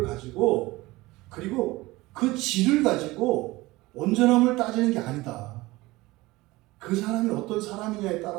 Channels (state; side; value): quieter; left; 20.2 dB